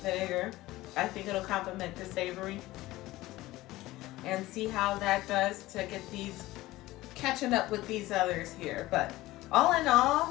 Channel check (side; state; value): right; quieter; 17.7 dB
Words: vinegar. I think it'll complement the savory, and see how that does to get these catching up with these others here. But all in